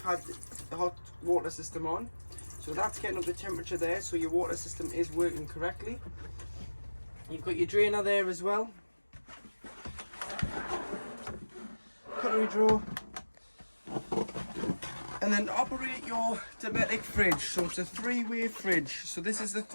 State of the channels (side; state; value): both; inverted; correlation -1.00